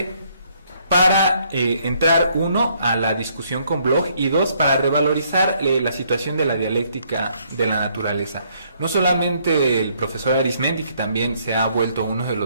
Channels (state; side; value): inverted; both; correlation -0.68